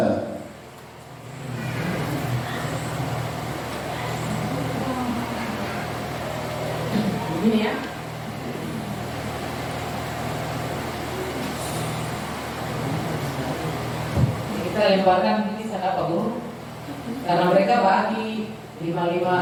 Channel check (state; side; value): identical; both; correlation 1.00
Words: Begini ya. kita lemparkan ini sana Pak Guru, karena mereka bagi